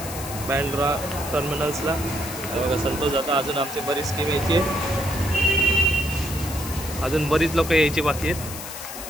बँड्रा टर्मिनल्सला. बघा संतोष दादा. अजून आमची बरीच टीम यायची आहे, अजून बरीच लोक यायची बाकी आहेत.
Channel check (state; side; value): noise; left; hiss, 10 dB below the sound